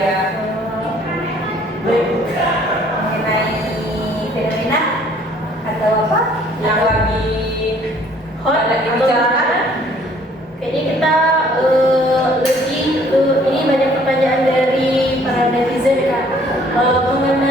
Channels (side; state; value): both; normal; correlation 0.59